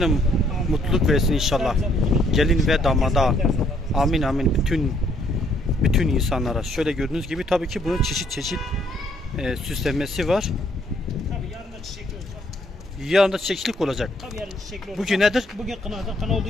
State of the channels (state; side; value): normal; both; correlation 0.67